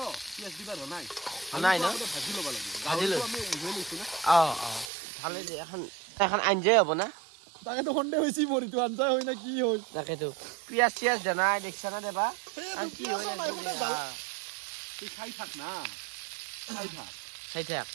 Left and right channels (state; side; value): drops out; left; at 4.9 s